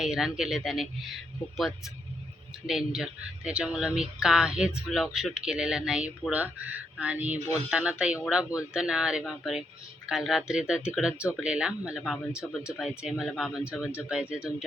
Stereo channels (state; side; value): normal; both; correlation 0.79